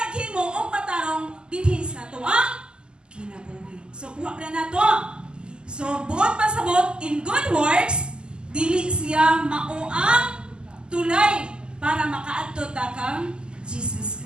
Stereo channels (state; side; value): late; left; 0.048 ms